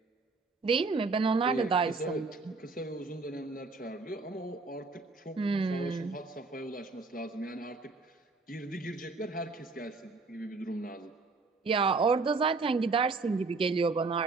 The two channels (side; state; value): left; quieter; 4.0 dB